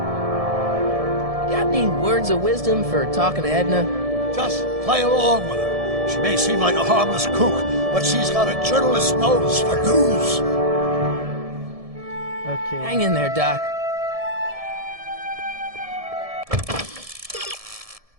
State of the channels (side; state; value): left; late; 1.7 ms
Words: Got any words of wisdom for talking to Edna? Just play along with her. She may seem like a harmless kook, but she's got a journalist's nose for news. Okay. Hang in there, Doc.